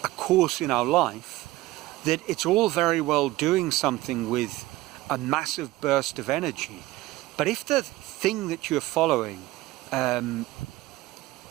course in our life, that it's all very well doing something with a massive burst of energy. But if the thing that you're following, I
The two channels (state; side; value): quieter; left; 17.9 dB